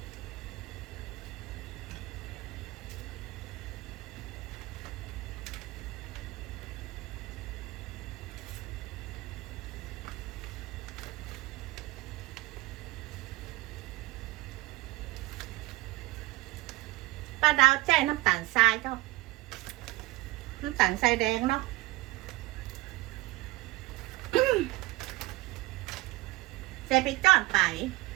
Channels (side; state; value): left; quieter; 20.9 dB